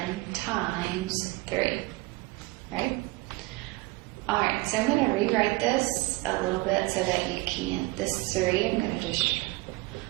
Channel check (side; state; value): left; quieter; 21.8 dB